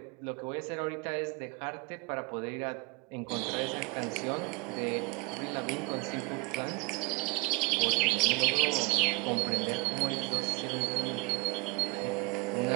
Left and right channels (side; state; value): left; quieter; 25.7 dB